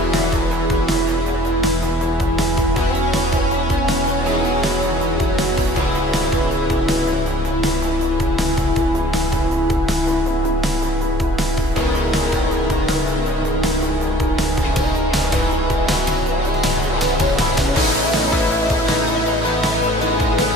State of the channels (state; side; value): normal; both; correlation 0.52